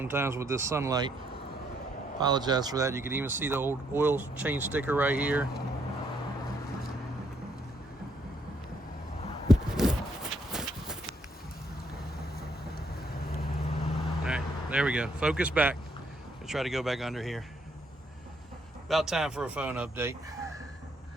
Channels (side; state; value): both; normal; correlation 0.71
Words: with this sunlight. Apologize for that. You can even see the old oil change sticker right here. Alright, there we go. Focus back. I'll try to go back under here. About time for a phone update.